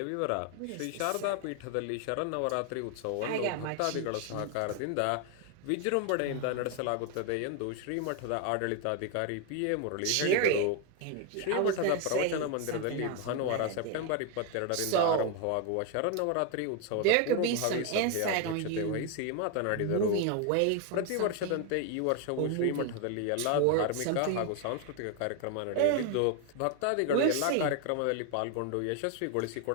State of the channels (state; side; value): different; both; correlation 0.01